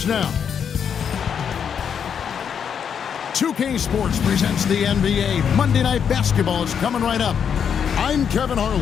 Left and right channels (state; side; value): quieter; right; 7.6 dB